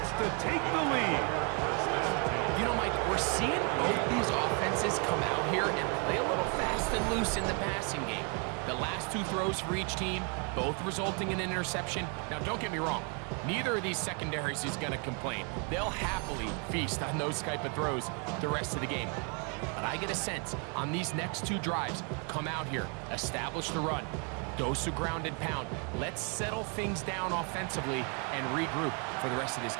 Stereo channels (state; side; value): quieter; left; 36.4 dB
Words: to take the lead. You know, Mike, we're seeing both these offenses come out here and play a little fast and loose in the passing game. The last 2 throws for each team, both resulting in an interception. Now, don't get me wrong. Neither of these secondaries is going to complain. They'll happily feast on those type of throws the rest of the game. But I get a sense on these next 2 drives, come out here, establish the run, dose of ground and pound. Let's settle things down offensively and regroup for the rest of this